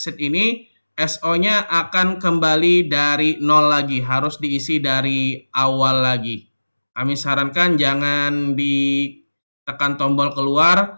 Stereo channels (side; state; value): both; inverted; correlation -1.00